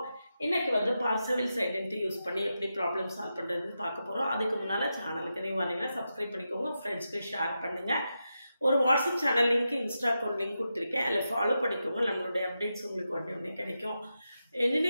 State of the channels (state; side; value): inverted; both; correlation -0.88